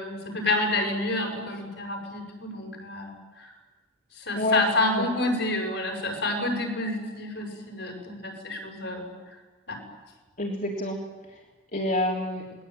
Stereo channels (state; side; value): normal; both; correlation 0.11